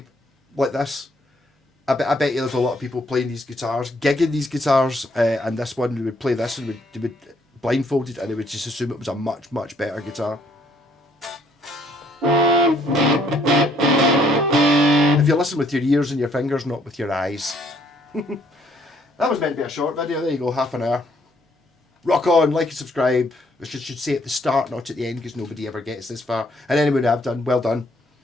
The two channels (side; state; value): both; normal; correlation 0.67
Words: like this. I bet you there's a lot of people playing these guitars, gigging these guitars, and this one, they would play this and they would blindfolded, and they would just assume it was a much, much better guitar. If you listen with your ears and your fingers, not with your eyes. That was meant to be a short video. There you go, half an hour. Rock on, like and subscribe. I should say at the start, not at the end, because nobody ever gets this far. And anyone I've done, well done